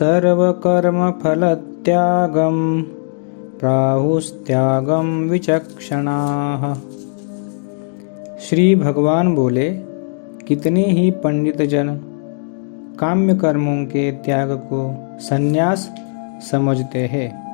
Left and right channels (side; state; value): right; silent; 60 dB below the other